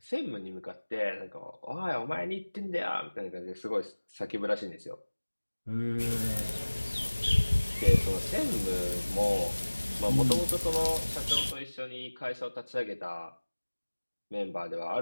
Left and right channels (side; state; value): both; inverted; correlation -1.00